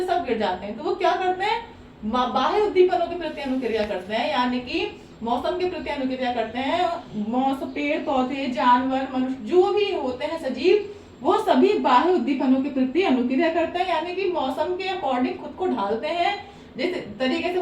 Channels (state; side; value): identical; both; correlation 1.00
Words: सब गिर जाते हैं, तो वो क्या करते हैं? बाह्य उद्दीपनों के प्रति अनुक्रिया करते हैं, यानी कि मौसम के प्रति अनुक्रिया करते हैं। मौसम, पेड़ पौधे, जानवर, मनुष्य, जो भी होते हैं सजीव, वो सभी बाह्य उद्दीपनों के प्रति अनुक्रिया करते हैं, यानी कि मौसम के अकॉर्डिंग खुद को ढालते हैं, जिस तरीके से